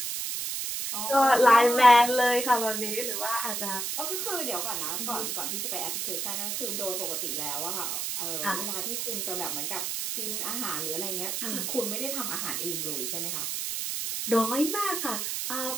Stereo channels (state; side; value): noise; right; hiss, 2 dB below the sound